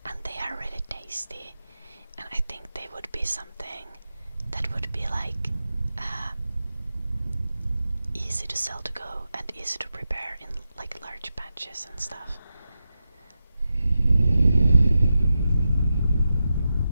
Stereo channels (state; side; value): inverted; both; correlation -0.90